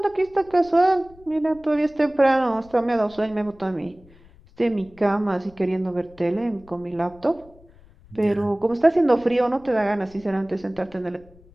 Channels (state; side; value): noise; left; rumble, 25 dB below the sound